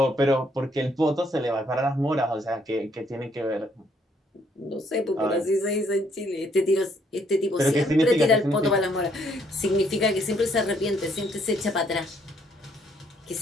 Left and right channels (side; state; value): both; normal; correlation 0.68